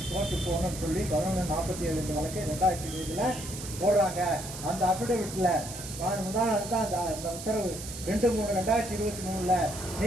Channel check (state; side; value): noise; right; hiss, 10 dB below the sound